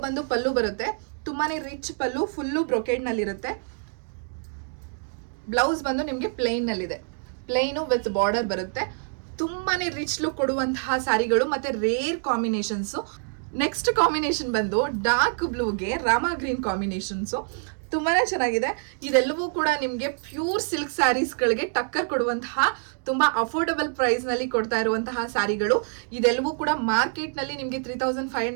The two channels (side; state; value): left; silent; 56 dB below the other